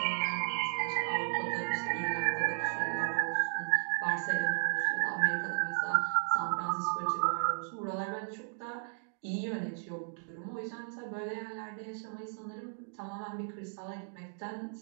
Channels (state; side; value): silent; left; digital silence